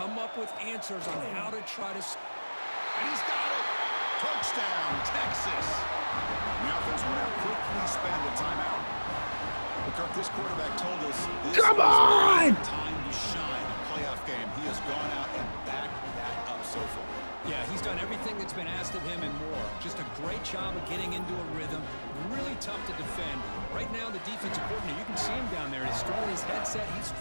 up with answers on how to try to... And he's got it! Touchdown, Texas! The offense will now quickly spend a timeout. But Kirk, this quarterback told us this is time to shine in a playoff game. He has gone out and backed that up so far. Yeah, he's done everything that's been asked of him and more. Just a great job of getting into a rhythm. Really tough to defend. Right now, the defensive coordinator, you can see him down there. He's throwing his headset. He's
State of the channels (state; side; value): inverted; both; correlation -1.00